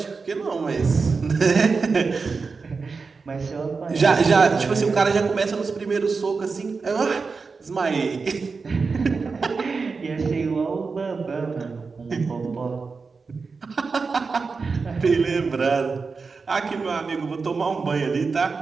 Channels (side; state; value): left; quieter; 4.6 dB